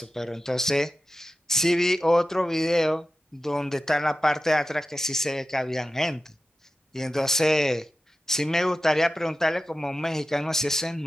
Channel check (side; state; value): both; normal; correlation 0.93